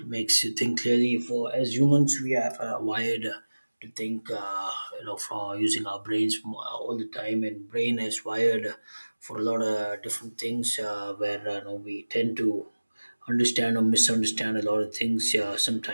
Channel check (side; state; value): both; inverted; correlation -1.00